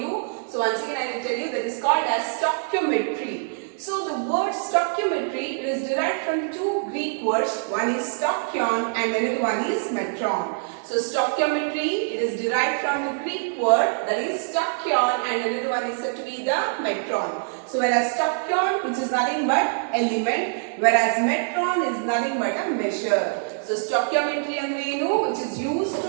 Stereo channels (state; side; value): silent; left; digital silence